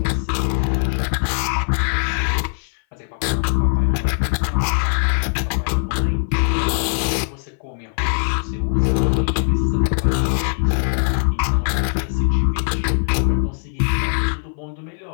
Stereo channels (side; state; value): right; silent; 59 dB below the other